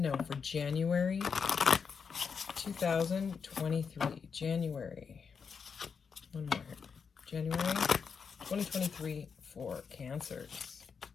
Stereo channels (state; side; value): quieter; right; 6.0 dB